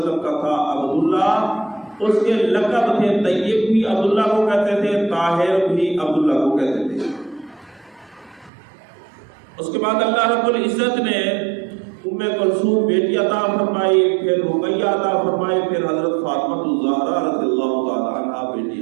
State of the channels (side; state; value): left; drops out; at 8.5 s